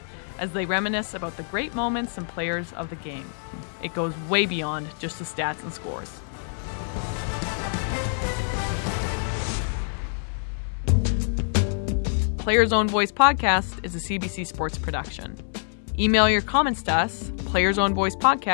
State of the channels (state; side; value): silent; right; 61 dB below the other